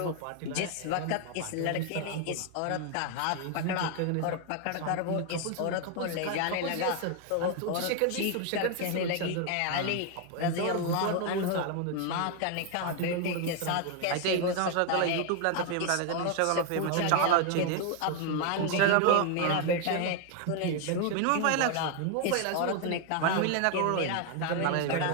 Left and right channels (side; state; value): both; different; correlation 0.01